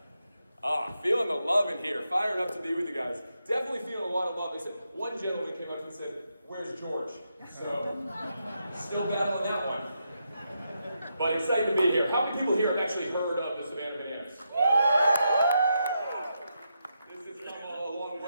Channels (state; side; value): inverted; both; correlation -0.83